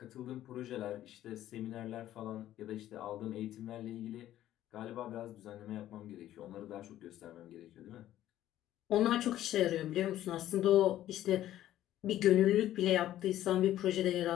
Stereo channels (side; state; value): right; quieter; 13.1 dB